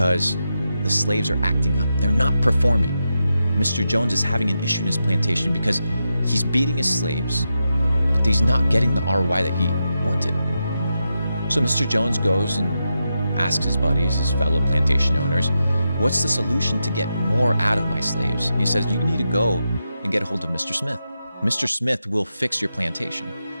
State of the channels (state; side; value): inverted; both; correlation -0.87